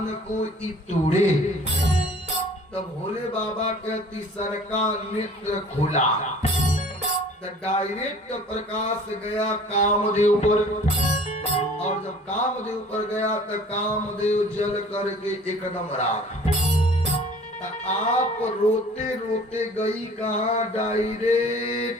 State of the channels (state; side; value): normal; both; correlation 0.49